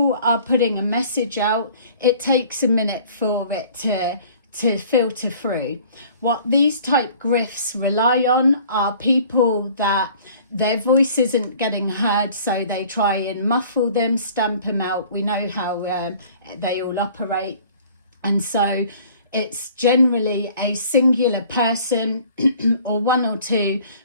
are putting a message out, it takes a minute for it to filter through. What these type grifts rely on are people that their voice isn't getting heard, so they try and muffle them, stamp them out. We know how they all operate. And so it's generally a singular person or one or two,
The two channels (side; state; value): both; inverted; correlation -0.51